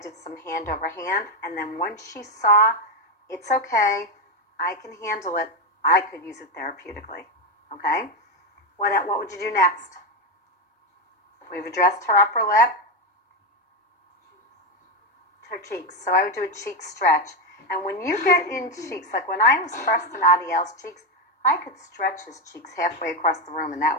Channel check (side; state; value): both; normal; correlation 0.09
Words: some hand over hand. And then once she saw, it's okay, I can handle it, I could use it therapeutically. Okay? What would you do next? We've addressed her upper lip, her cheeks. So I would do a cheek stretch. And when you get in cheeks, like when I was first in Adiel's cheeks, I could stretch his cheeks halfway across the room. And that